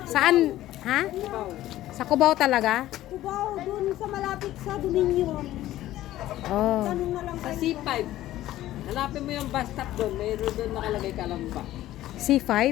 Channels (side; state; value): right; quieter; 14.5 dB